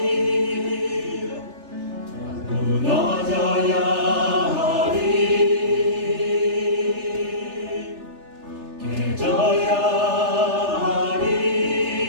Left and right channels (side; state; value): left; late; 3.3 ms